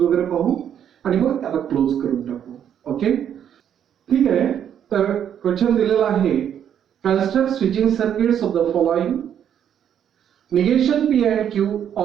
पाहू आणि मग त्याला क्लोज करून टाकू. ओके, ठीक आहे. तर क्वेश्चन दिलेला आहे, construct switching circuits of the following negation P and Q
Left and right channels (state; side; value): quieter; left; 9.2 dB